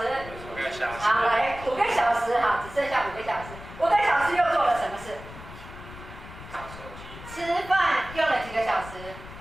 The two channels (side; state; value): left; noise; rumble, 15 dB below the sound